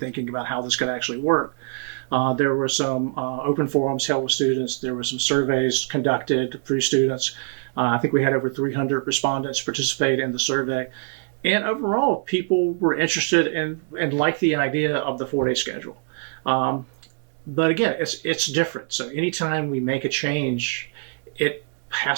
about how this could actually work. There were some open forums held with students. There were some surveys conducted through students. I think we had over 300 respondents participate in the survey. And overall, people were interested and liked the idea of the 4-day schedule. But again, it's different. So anytime we make a change, it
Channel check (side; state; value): left; silent; 63 dB below the other